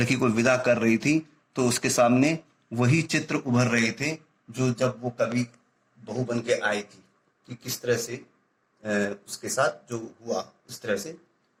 को विदा कर रही थी तो उसके सामने वही चित्र उभर रहे थे जो जब वो कभी बहू बन के आई थी, कि किस तरह से उसके साथ जो हुआ उस तरह से।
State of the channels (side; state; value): both; identical; correlation 1.00